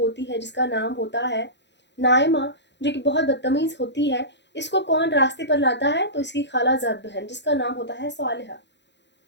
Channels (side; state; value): right; late; 0.51 ms